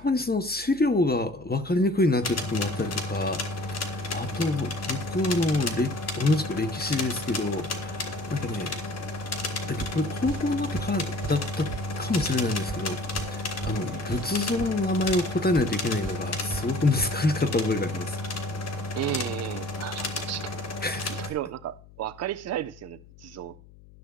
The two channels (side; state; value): left; noise; hum, 23 dB below the sound